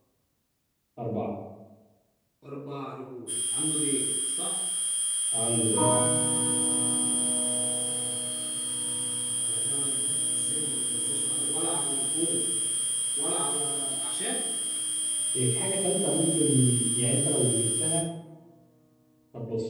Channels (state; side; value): identical; both; correlation 1.00